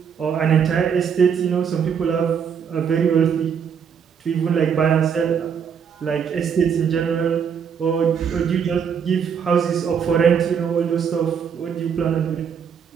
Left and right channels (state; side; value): quieter; left; 7.2 dB